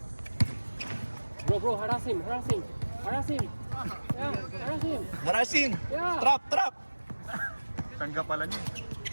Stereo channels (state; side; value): inverted; both; correlation -1.00